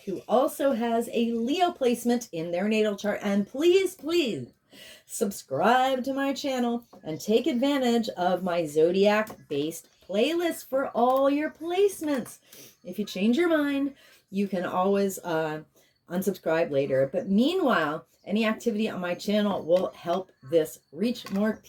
who also has a Leo placement in their natal chart. And please, please subscribe to my channel and take advantage of my zodiac-based playlist for all your placements. If you change your mind, you can always unsubscribe later. But meanwhile, any activity on my channel will help this reach more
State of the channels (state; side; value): identical; both; correlation 1.00